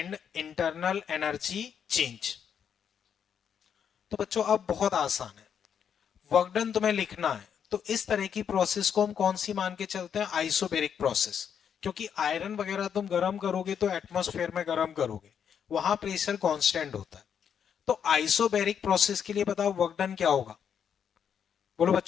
internal energy change. तो बच्चों अब बहुत आसान है, वर्क डन तुम्हें लिखना है, तो इस तरह की प्रोसेस को हम कौन सी मान के चलते हैं? Isobaric process. क्योंकि आयरन वगैरह तुम गर्म करोगे तो एटमॉस्फेयर में गर्म करोगे, वहां प्रेशर कांस्टेंट होता है। तो आइसोबेरिक प्रोसेस के लिए बताओ वर्क डन क्या होगा? बोलो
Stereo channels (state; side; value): quieter; right; 7.9 dB